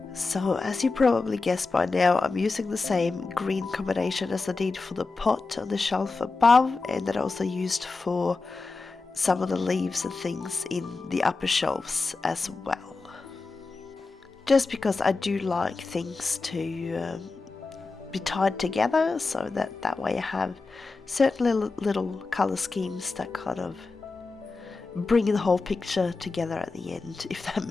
So as you probably guessed by now, I'm using the same green combination as I did for the pot on the shelf above, and that I also used for some of the leaves and things in the upper shelves as well. Just because I do like things to be tied together, so that way I have certain little colour schemes that kind of bring the whole picture together at the end, if that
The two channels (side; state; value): right; quieter; 3.9 dB